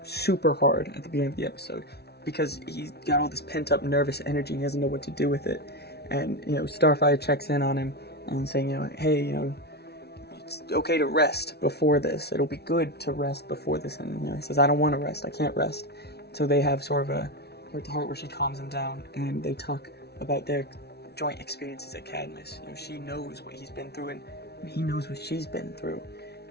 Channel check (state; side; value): late; right; 0.48 ms